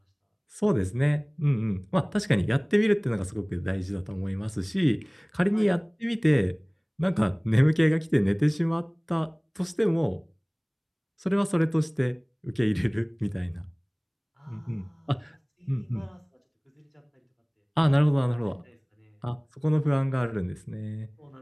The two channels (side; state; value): both; identical; correlation 1.00